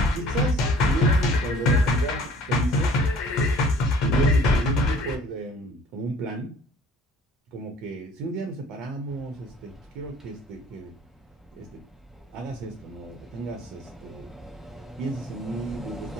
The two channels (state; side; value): normal; both; correlation 0.52